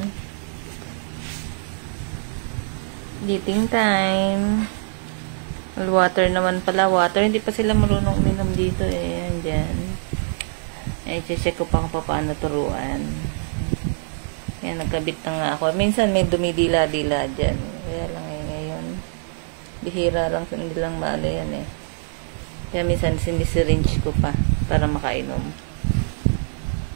eating time. Water naman pala. Water. Hindi pa sila marunong uminom dito eh. Yan dyan. Ay, check ko pa kung paano turuan. Yan, nagkabit na nga ako. Minsan may dumidila-dila dyan. Kaya lang ngayon. Bihira lang, hindi lang maalo yan eh. Kaya minsan sinisiringe ko pa para makainom.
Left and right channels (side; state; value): left; silent; digital silence